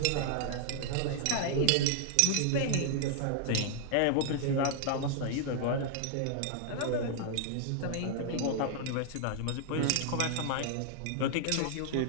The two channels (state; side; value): different; both; correlation 0.00